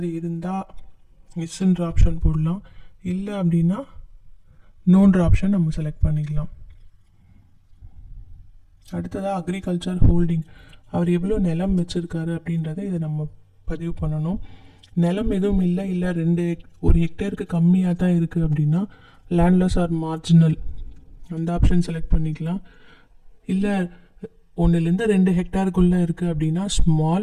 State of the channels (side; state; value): both; identical; correlation 1.00